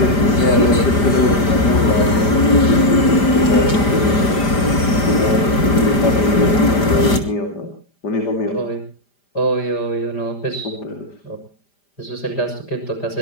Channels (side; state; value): right; late; 5.0 ms